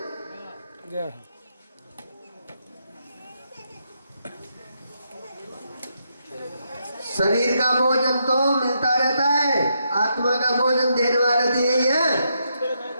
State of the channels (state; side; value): inverted; both; correlation -0.80